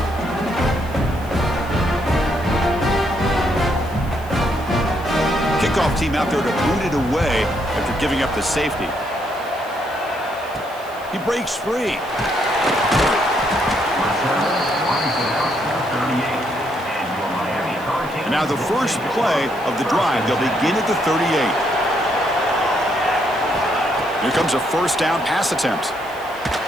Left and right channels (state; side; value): noise; right; hiss, 22 dB below the sound